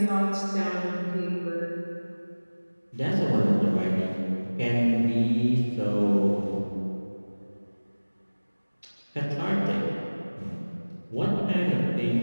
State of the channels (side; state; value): both; inverted; correlation -1.00